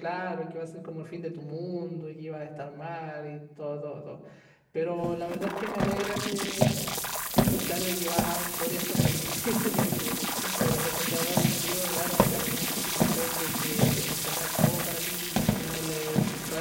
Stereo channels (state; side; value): identical; both; correlation 1.00